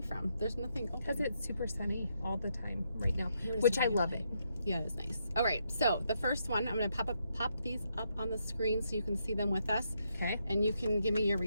from. There's nothing open. Because it's super sunny all the time right now, which I love it. Yeah, it's nice. All right, so the first one, I'm going to pop these up on the screen so you can see them with us. Okay. And you can give me your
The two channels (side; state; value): both; inverted; correlation -0.79